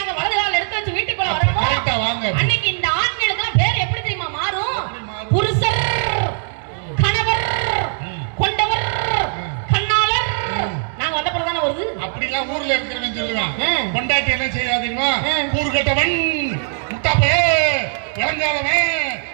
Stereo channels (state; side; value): silent; left; digital silence